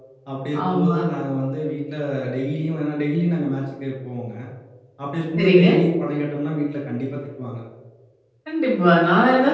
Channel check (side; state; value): both; identical; correlation 1.00